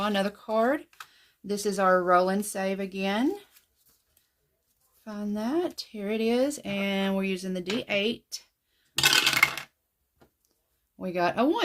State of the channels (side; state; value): both; identical; correlation 1.00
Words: another card. This is our roll and save again. Find that. Here it is. And we're using the D8. We got a